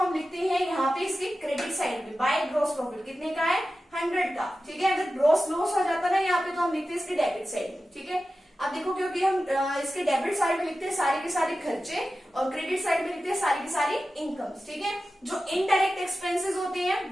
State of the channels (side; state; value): both; normal; correlation 0.93